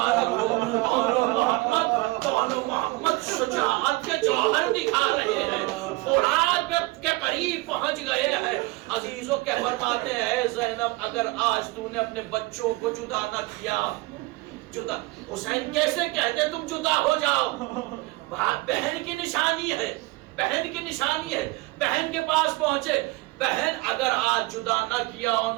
ہو، دونوں محمد شجاعت کے جوہر دکھا رہے ہیں، فرات کے قریب پہنچ گئے ہیں۔ عزیزوں کے فرماتے ہیں زینب اگر آج تو نے اپنے بچوں کو جدا نہ کیا، جدا حسین کیسے کہتے تم جدا ہو جاؤ؟ بہن کی نشانی ہے، بہن کی نشانی ہے، بہن کے پاس پہنچے، بہن اگر آج جدا نہ کیا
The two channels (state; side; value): quieter; left; 22.4 dB